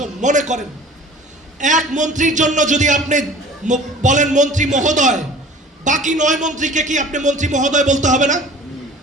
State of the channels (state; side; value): normal; both; correlation 0.45